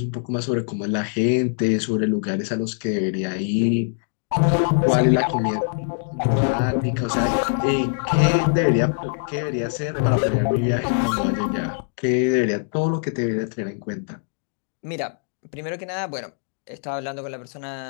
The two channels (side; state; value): right; silent; digital silence